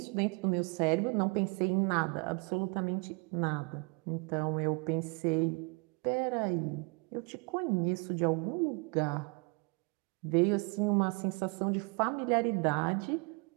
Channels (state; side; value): quieter; left; 31.2 dB